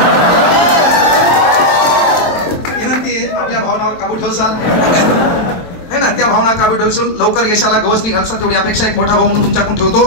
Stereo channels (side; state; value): right; late; 23 ms